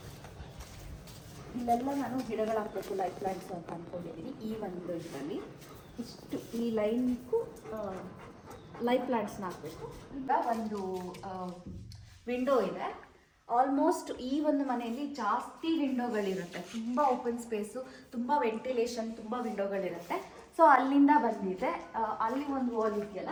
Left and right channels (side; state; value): both; identical; correlation 1.00